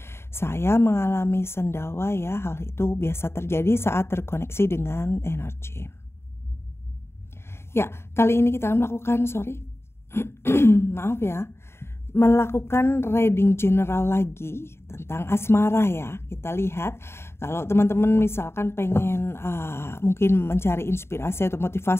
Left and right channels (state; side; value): late; right; 0.12 ms